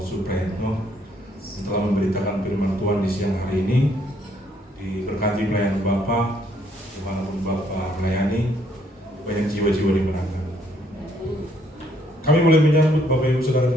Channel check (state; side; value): normal; both; correlation 0.68